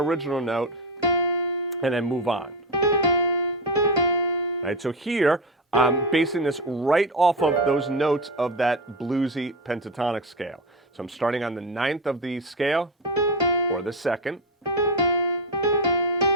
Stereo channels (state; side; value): normal; both; correlation 0.15